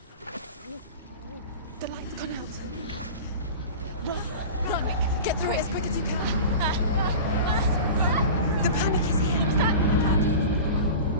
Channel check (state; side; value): inverted; both; correlation -0.33